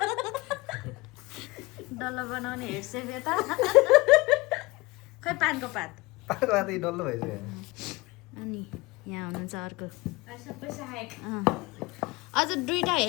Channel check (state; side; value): quieter; right; 22.6 dB